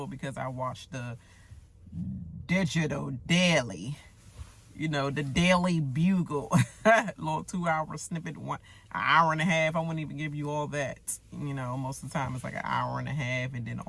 because I watched the digital daily, you know, the Daily Bugle, little 2-hour snippet, an hour and a half. I wouldn't even give you all that, you know. Most of the time it's like an hour and a half, and then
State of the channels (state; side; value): identical; both; correlation 1.00